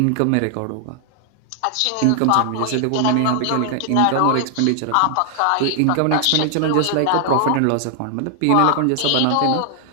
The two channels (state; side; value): different; both; correlation 0.00